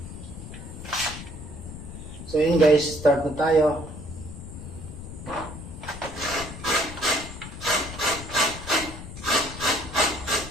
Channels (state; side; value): noise; left; rumble, 11 dB below the sound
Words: So, ayan guys, start na tayo.